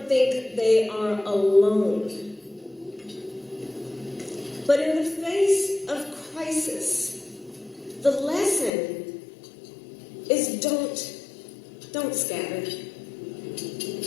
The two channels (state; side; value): drops out; right; at 8.7 s